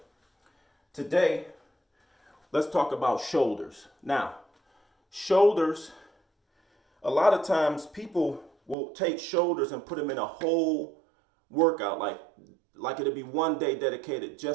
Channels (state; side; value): drops out; left; at 8.8 s